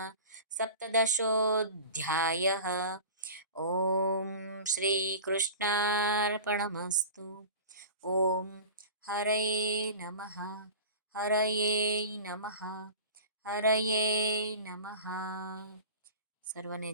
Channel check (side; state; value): both; inverted; correlation -0.36